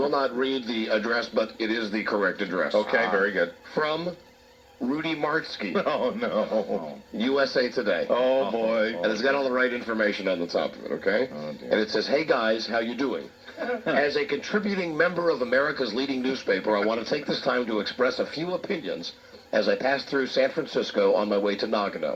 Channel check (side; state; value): both; identical; correlation 1.00